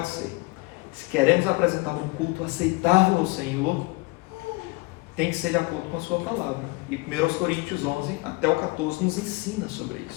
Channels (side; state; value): right; quieter; 24.3 dB